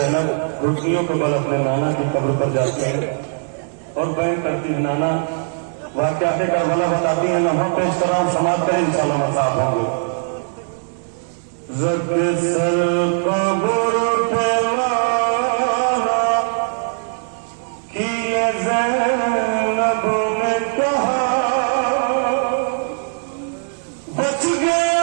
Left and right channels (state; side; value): silent; left; 64 dB below the other